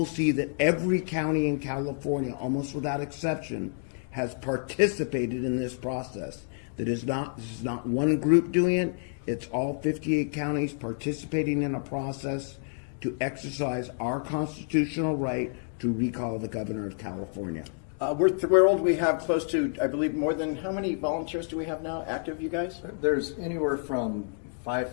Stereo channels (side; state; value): right; silent; 59 dB below the other